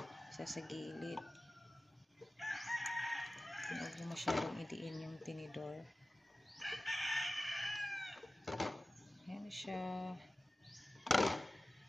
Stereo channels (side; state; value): both; normal; correlation 0.96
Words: Sa gilid. Huwag mo masyadong idiin yung tinidor. Ayan siya.